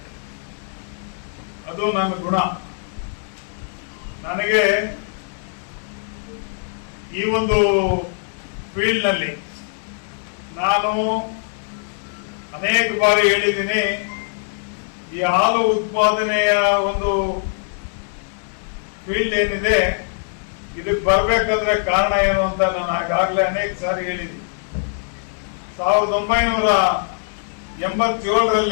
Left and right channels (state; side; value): silent; right; digital silence